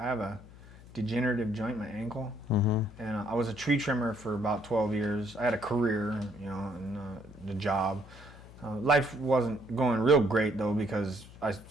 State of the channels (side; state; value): left; noise; hum, 20 dB below the sound